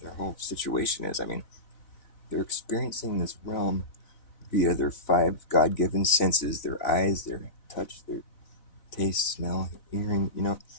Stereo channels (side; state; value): right; late; 4.0 ms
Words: whole situation is. I mean, they're experiencing this realm via their 5 God-given senses, their eyes, their touch, their taste, smell, hearing,